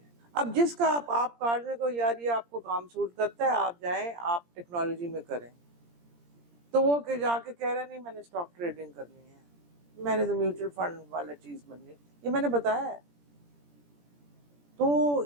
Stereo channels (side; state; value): left; late; 17 ms